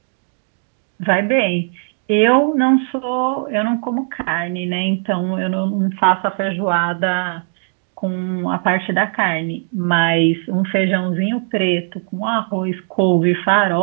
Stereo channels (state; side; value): silent; left; 59 dB below the other